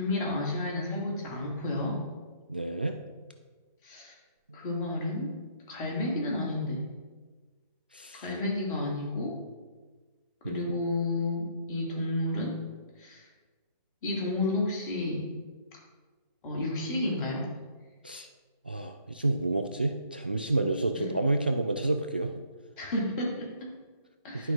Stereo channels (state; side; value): inverted; both; correlation -0.63